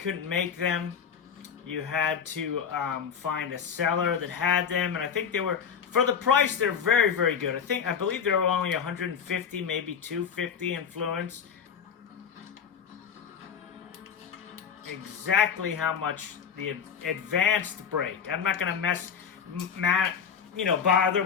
make them. You had to find a seller that had them, and I think they were, for the price, they're very, very good. I believe they were only 150, maybe 250 influence. Exactly how much the advanced brake. I'm not gonna bother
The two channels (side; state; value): right; quieter; 7.2 dB